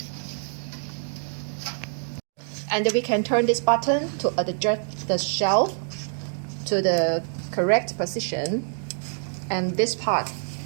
And then we can turn this button to adjust the shelf to the correct position. And this part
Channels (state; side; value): silent; left; digital silence